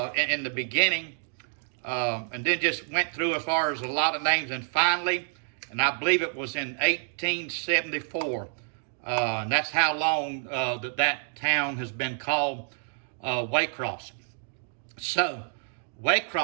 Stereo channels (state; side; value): silent; left; 59 dB below the other